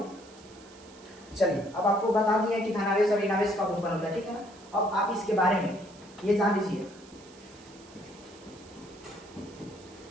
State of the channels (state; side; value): noise; right; hiss, 23 dB below the sound